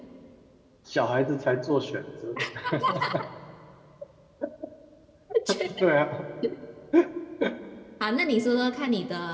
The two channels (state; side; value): identical; both; correlation 1.00